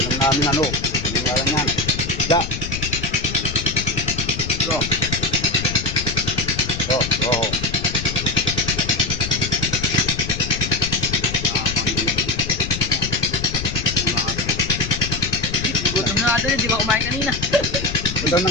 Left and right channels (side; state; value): left; noise; rumble, 7 dB below the sound